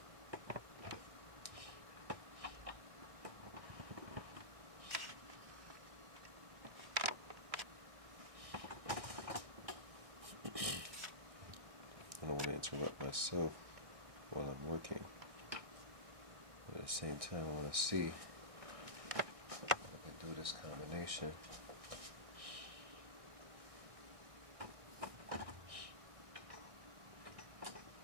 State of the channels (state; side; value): late; left; 1.6 ms